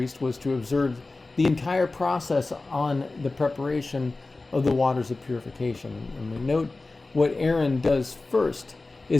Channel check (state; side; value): quieter; right; 3.3 dB